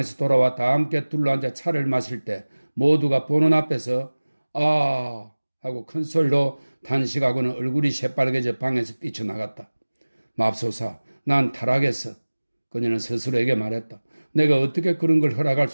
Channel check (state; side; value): inverted; both; correlation -1.00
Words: 돌아와 다 함께 둘러앉아 차를 마실 때 모두가 보는 앞에서 아 하고 큰 소리로 단식하고는 얼굴이 새빨개져 방에서 뛰쳐나갔다. 맙소사, 난 타락했어. 그녀는 스스로에게 말했다. 내가 어떻게 그런 걸 허락할